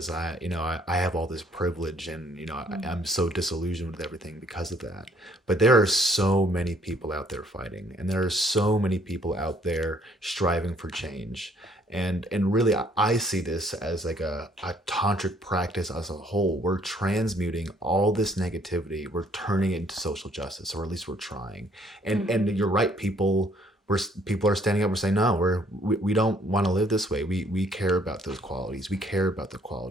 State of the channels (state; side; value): normal; both; correlation 0.63